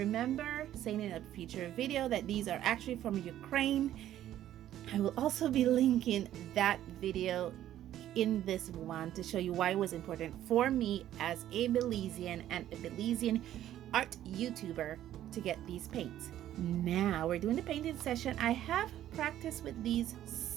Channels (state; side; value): quieter; left; 12.3 dB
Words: saying in a future video that these are actually from Ukraine. I will also be linking that video in this one to show you why it was important for me as a Belizean and a Belizean art YouTuber to get these paints. Now we're doing the painting session. I have practiced with these